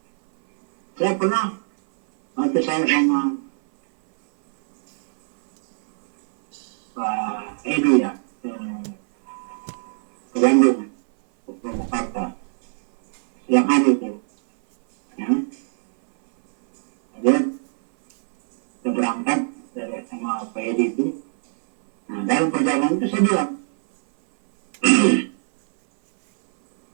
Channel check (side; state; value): left; silent; 60 dB below the other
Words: saya pernah waktu saya sama Pak Edi ya, ke Bandung, ke Purwakarta, yang hari itu, ya, dia berangkat dari sama Pak Edi itu. Nah, dalam perjalanan itu saya bilang,